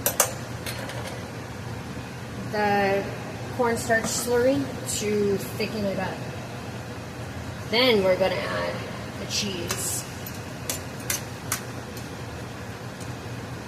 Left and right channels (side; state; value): both; identical; correlation 1.00